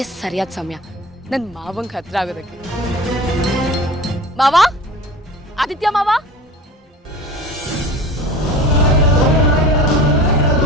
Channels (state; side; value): normal; both; correlation 0.38